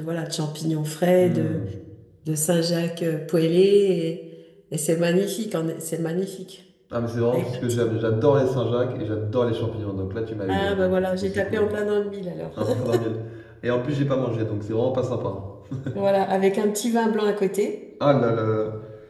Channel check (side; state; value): both; identical; correlation 1.00